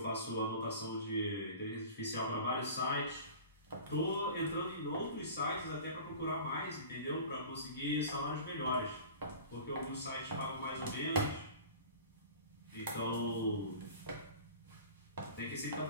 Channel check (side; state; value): both; inverted; correlation -0.39